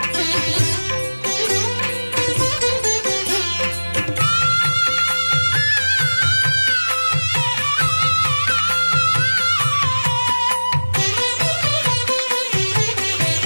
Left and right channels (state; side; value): inverted; both; correlation -1.00